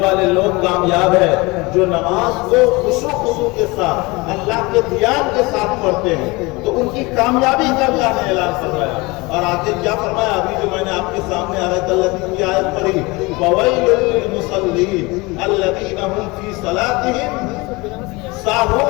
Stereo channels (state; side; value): quieter; right; 24.3 dB